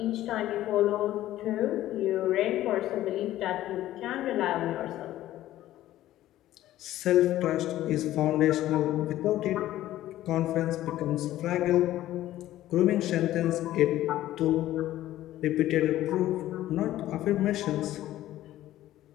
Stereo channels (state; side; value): quieter; right; 14.1 dB